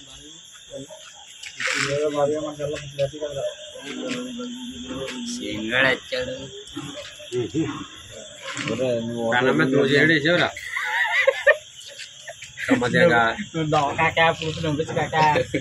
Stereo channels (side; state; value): both; identical; correlation 1.00